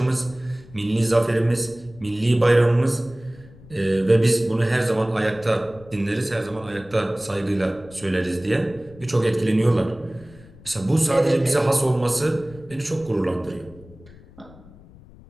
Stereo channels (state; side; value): noise; left; rumble, 22 dB below the sound